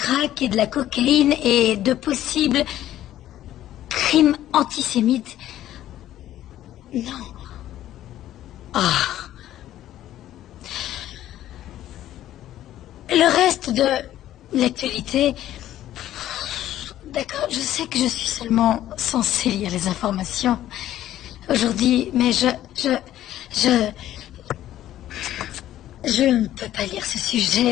et de la cocaïne et de possibles crimes antisémites. Non. Ah. Le reste de l'actualité... D'accord, je sais que je suis seulement censée lire les informations aujourd'hui, mais je ne peux pas lire ce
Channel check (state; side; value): quieter; right; 12.9 dB